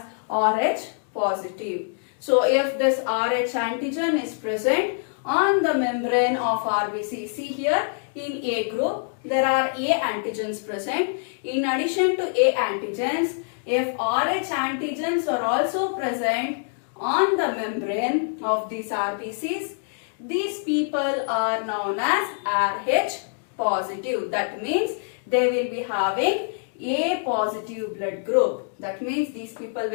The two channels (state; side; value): silent; right; digital silence